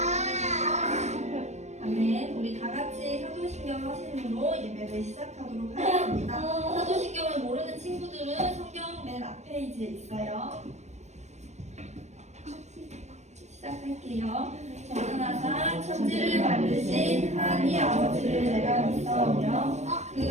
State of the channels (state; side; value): late; left; 0.33 ms